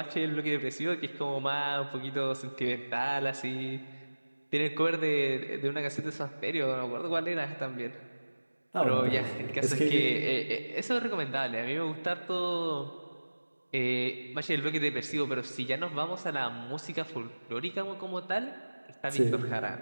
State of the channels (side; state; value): both; inverted; correlation -1.00